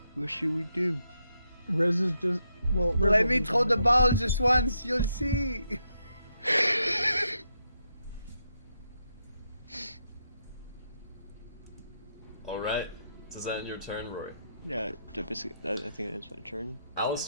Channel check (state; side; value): inverted; both; correlation -0.81